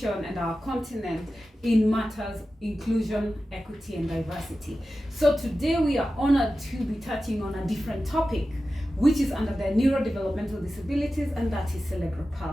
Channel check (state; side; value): normal; both; correlation 0.94